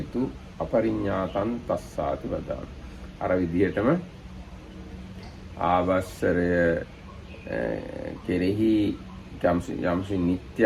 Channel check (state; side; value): identical; both; correlation 1.00